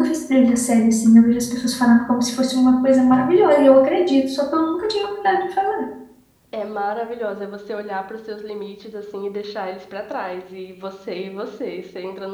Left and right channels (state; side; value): identical; both; correlation 1.00